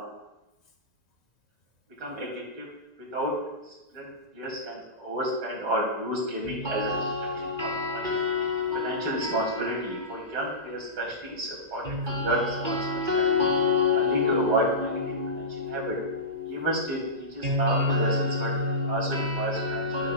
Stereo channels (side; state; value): left; late; 1.9 ms